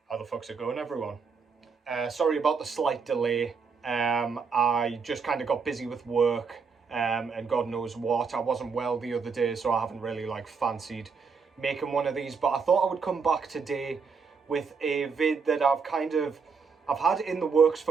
How the fuck's it going, everyone? Sorry about the slight delay. I just kind of got busy with work, and God knows what. I wasn't well the other day, so I haven't really fancied making one of these. But I thought I would come back today with a vid that I've had in the works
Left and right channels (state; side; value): quieter; left; 5.4 dB